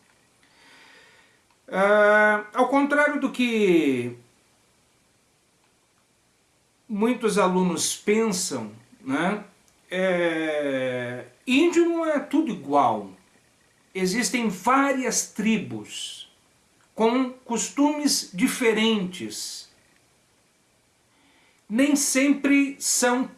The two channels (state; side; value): identical; both; correlation 1.00